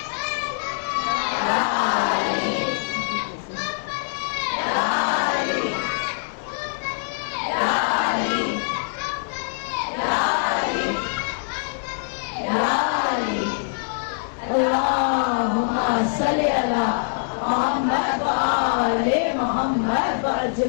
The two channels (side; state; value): right; silent; 63 dB below the other